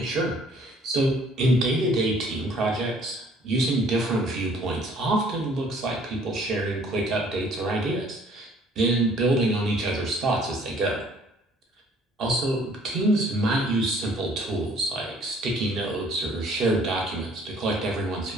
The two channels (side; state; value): both; normal; correlation 0.58